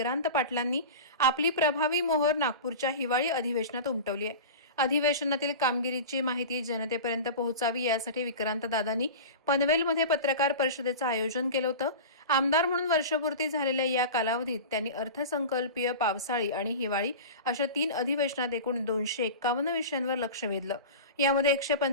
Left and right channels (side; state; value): both; inverted; correlation -0.31